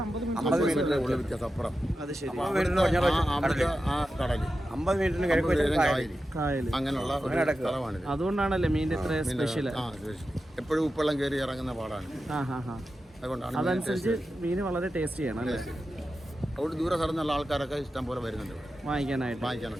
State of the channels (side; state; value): both; normal; correlation 0.91